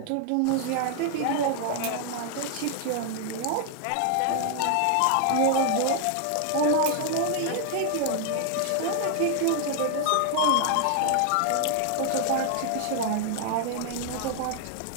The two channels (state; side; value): different; both; correlation 0.00